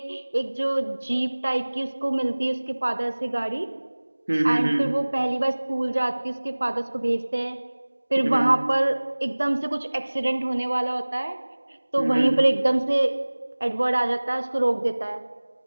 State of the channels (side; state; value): both; inverted; correlation -1.00